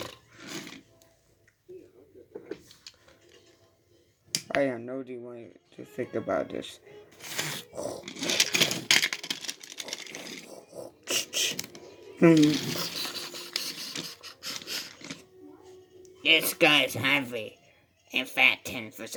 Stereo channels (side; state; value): both; identical; correlation 1.00